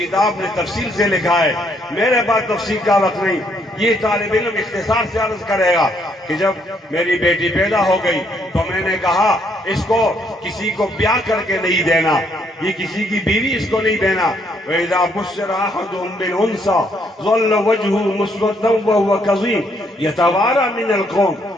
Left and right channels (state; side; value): normal; both; correlation 0.70